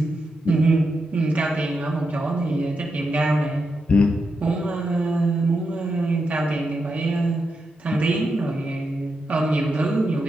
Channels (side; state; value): both; normal; correlation 0.86